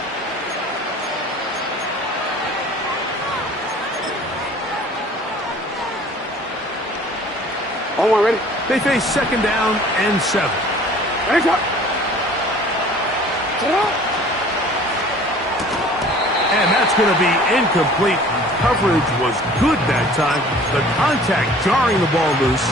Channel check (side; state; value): both; normal; correlation 0.49